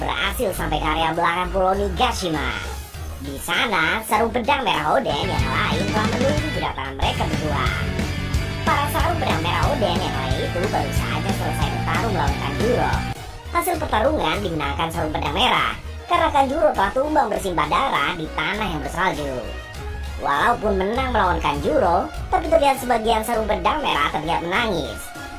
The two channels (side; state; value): both; identical; correlation 1.00